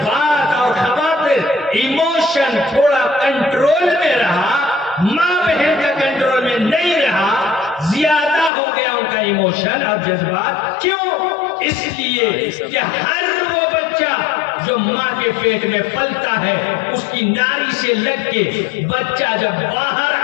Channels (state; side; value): drops out; right; at 8.5 s